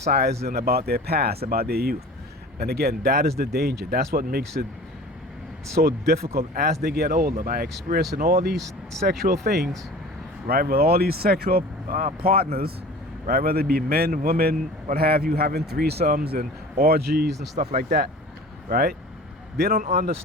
about their past, about their youth. And again, that is the danger. That's what makes it so difficult as they get older, by experiencing all these sexual things, right, with all these sexual partners, right, whether it be men, women, what have you, having threesomes and orgies and stuff like that, right? They don't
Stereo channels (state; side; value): normal; both; correlation 0.41